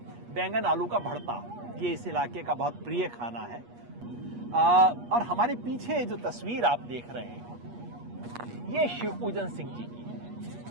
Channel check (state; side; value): late; left; 8.4 ms